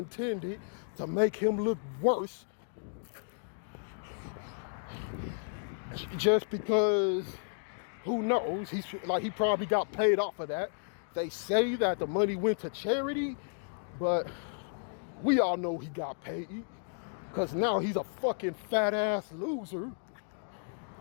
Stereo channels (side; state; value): right; silent; digital silence